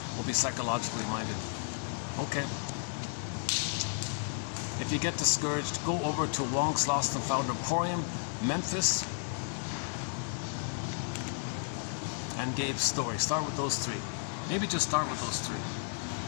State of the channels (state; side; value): silent; right; 56 dB below the other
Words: will be psychologically minded. Okay. If you get discouraged, go over to Wong's Lost and Found Emporium, Memphis, and Gabe's story. Start with those 3. Maybe just start with those 3.